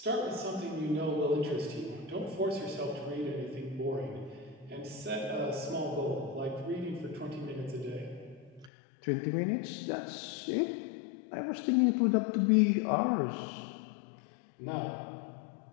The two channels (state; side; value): drops out; right; at 8.7 s